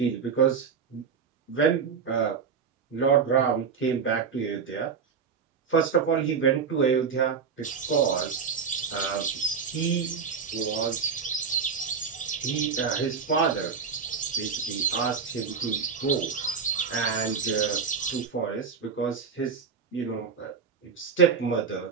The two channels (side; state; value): left; quieter; 6.1 dB